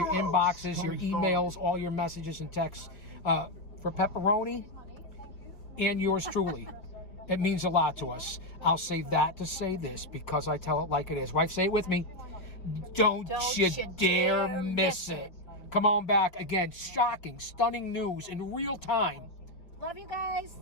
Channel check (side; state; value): right; late; 5.3 ms